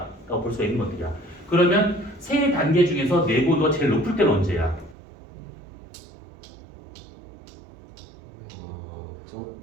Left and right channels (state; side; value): drops out; left; at 5.0 s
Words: 볼 수가 있는 것들이야. 그러면 세 단계 중에서 내부 온도가 제일 높을 때는 언제야?